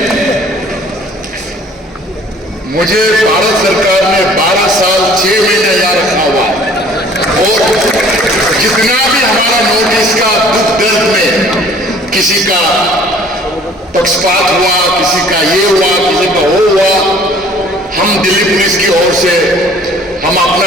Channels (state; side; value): normal; both; correlation 0.53